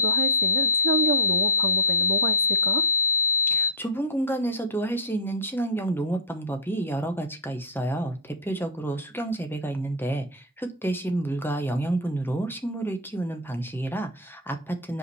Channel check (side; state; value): both; normal; correlation -0.10